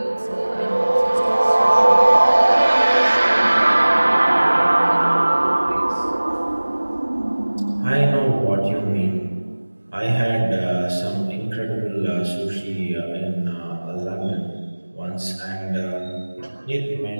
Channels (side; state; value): both; inverted; correlation -1.00